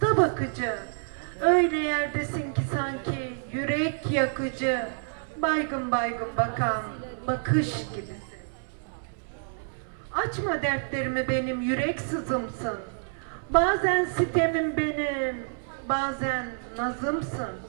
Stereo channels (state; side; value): silent; left; 59 dB below the other